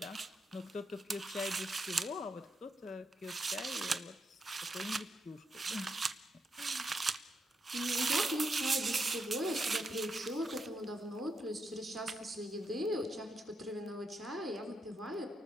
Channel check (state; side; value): normal; both; correlation 0.82